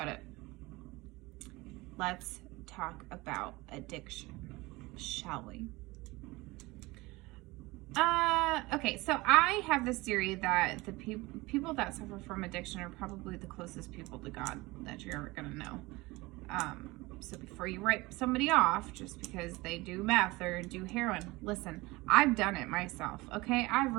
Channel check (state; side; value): quieter; left; 21.7 dB